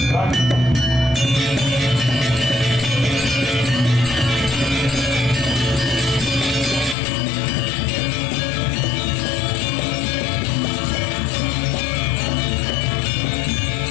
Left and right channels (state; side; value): drops out; right; at 7.0 s